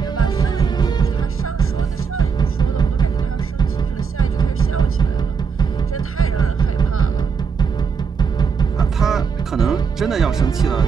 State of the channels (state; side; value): quieter; left; 5.9 dB